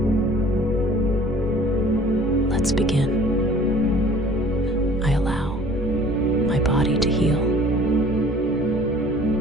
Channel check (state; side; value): normal; both; correlation 0.50